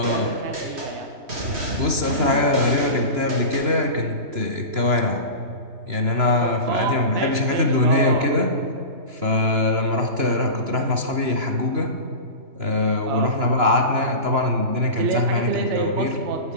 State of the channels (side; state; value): left; late; 2.9 ms